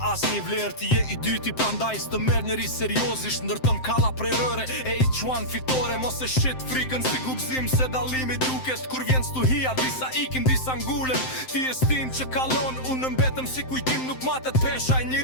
as një vlerë. Ti je i dyti prandaj s'të merr njeri seriozisht, ndërton kalla prej rëre e i quan fitore. Mos e shit frikën si gubzim se dallimi duket. Kur vjen stuhia, disa ikin, disa ngulem. Ti e stin që kalon, unë mbetëm si kujtim. Nuk matet pesha e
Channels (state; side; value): late; right; 7.7 ms